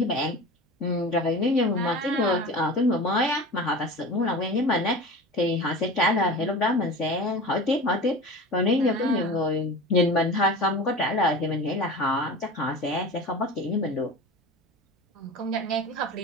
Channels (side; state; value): both; normal; correlation 0.33